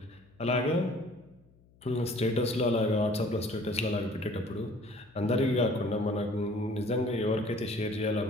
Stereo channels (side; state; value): left; noise; hum, 29 dB below the sound